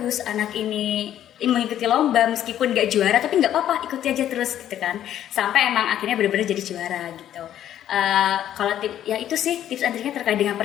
anak ini mengikuti lomba meskipun gak juara tapi gak apa-apa, ikuti aja terus gitu kan. Sampai emang akhirnya benar-benar jadi juara gitu. Kalau ya itu sih tips and triknya terkait dengan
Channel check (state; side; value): quieter; right; 11.2 dB